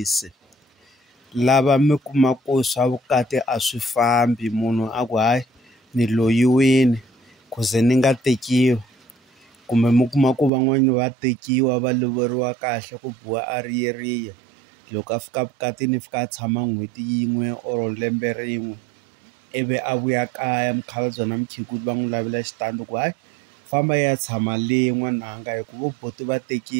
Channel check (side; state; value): left; drops out; at 10.5 s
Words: lava mi kuma ku swa vukati a swi fambi, munhu a ku hayi ni loyiwini ku ze ni nga tekiwi, kumbe mi kuma ku van'wani va tekiwa va lovoriwa kahle ku biwa a riyeriya. Loko a fika vukatini fika a tshama n'hweti yin'we or lembe rin'we ivi a vuya kaya mukhalabye na mukhegula va n'wi lavela xitandi ku hayi famba ya tshama le n'wananga hi ku vo buti va